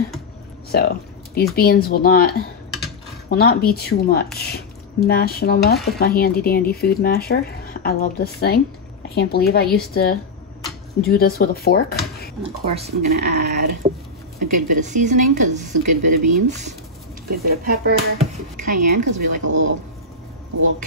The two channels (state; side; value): quieter; right; 3.1 dB